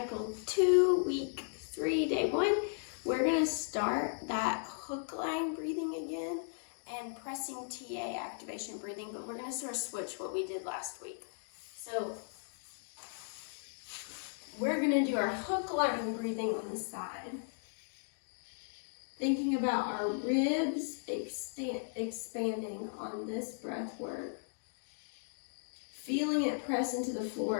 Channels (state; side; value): silent; right; digital silence